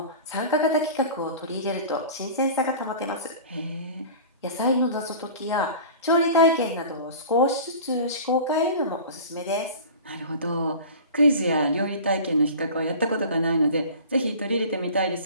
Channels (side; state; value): both; inverted; correlation -0.39